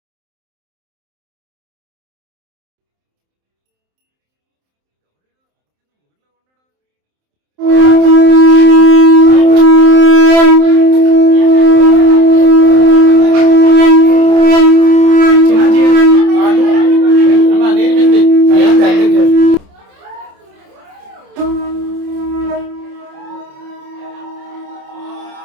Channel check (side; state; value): left; late; 27 ms